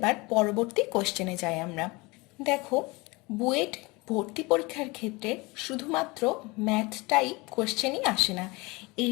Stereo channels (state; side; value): quieter; right; 24.6 dB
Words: পরবর্তী কোশ্চেনে যাই আমরা। দেখো বুয়েট ভর্তি পরীক্ষার ক্ষেত্রে শুধুমাত্র ম্যাথ টাইপ কোশ্চেনই আসে না, এই